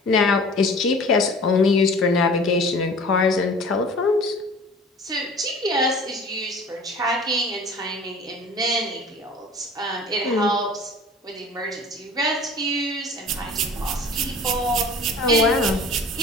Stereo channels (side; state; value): both; normal; correlation 0.44